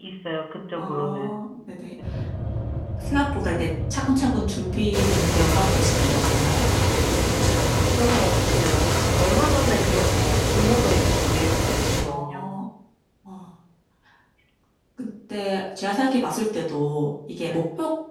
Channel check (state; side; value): identical; both; correlation 1.00